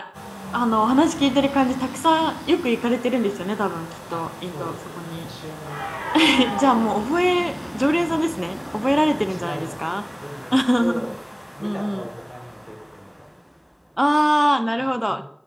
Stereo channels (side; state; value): both; identical; correlation 1.00